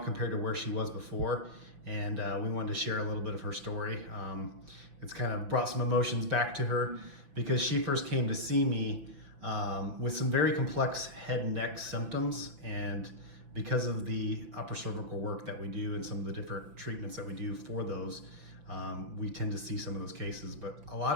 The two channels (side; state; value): left; late; 5.9 ms